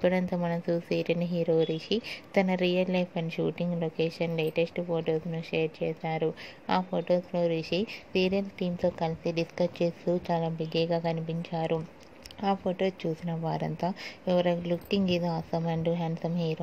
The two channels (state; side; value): identical; both; correlation 1.00